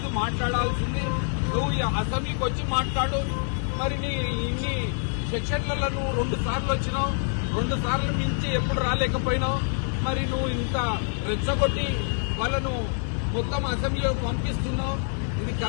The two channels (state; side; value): silent; right; 56 dB below the other